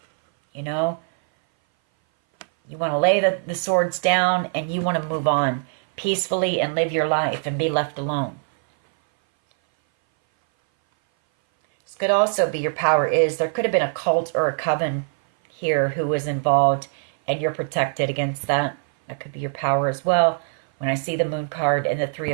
You know, you want to lay the swords down and you want to move on peacefully and live your life and be left alone. This could also be your power is there could have been a cult or a coven here who was involved and you're protected against that. That could be your power as well. When I see the Moon card and the Three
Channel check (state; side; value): silent; left; 59 dB below the other